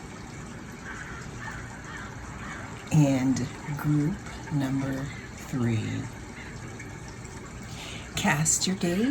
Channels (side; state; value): both; identical; correlation 1.00